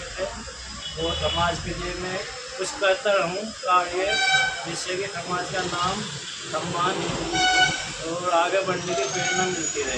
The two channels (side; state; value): both; identical; correlation 1.00